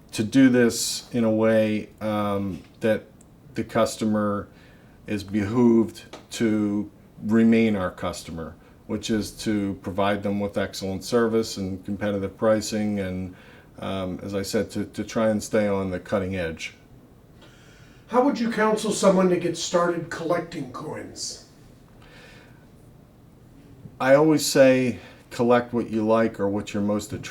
to do this in a way that the customer is behooved to remain our customer, which is to provide them with excellent service and competitive pricing, and as I said, to try and stay on the cutting edge. How would you counsel someone to get started collecting coins? I always say collect what you like or what you're most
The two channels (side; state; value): both; identical; correlation 1.00